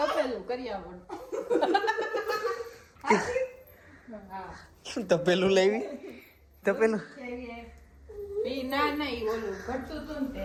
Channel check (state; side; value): identical; both; correlation 1.00